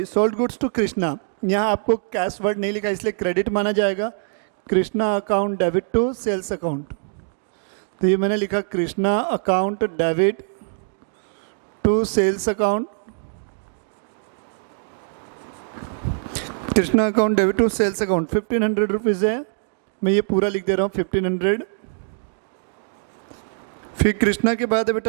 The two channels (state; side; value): silent; left; digital silence